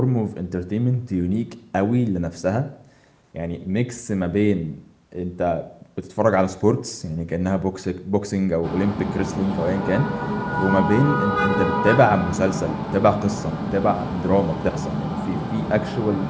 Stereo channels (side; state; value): both; identical; correlation 1.00